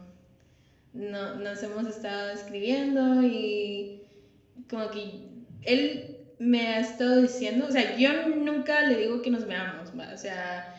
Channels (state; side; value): identical; both; correlation 1.00